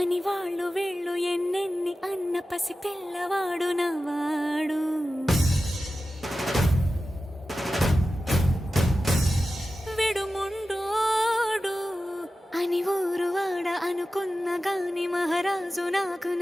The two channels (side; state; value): both; normal; correlation 0.94